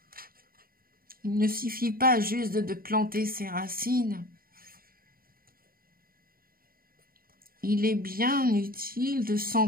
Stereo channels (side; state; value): left; late; 0.42 ms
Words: Il ne suffit pas juste de planter ses racines. Il est bien utile de